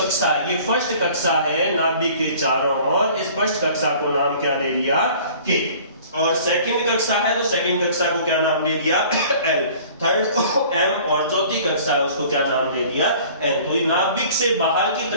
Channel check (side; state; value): both; inverted; correlation -0.49